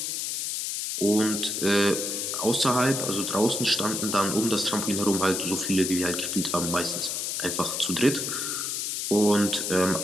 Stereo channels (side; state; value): left; noise; hiss, 2 dB below the sound